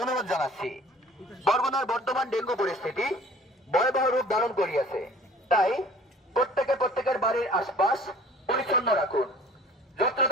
অনুরোধ জানাচ্ছি। বরগুনার বর্তমান ডেঙ্গু পরিস্থিতি ভয়াবহ রূপ ধারণ করিয়াছে, তাই প্রত্যেকের বাড়ির আশপাশ পরিচ্ছন্ন রাখুন।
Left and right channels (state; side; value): normal; both; correlation 0.49